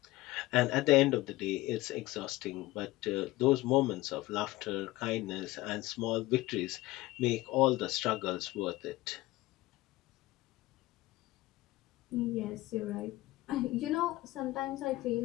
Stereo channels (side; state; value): right; quieter; 18.4 dB